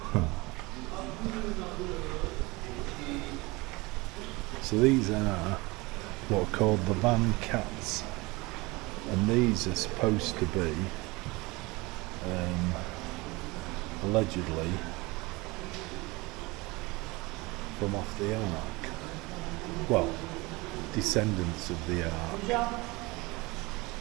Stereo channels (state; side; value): quieter; left; 23.7 dB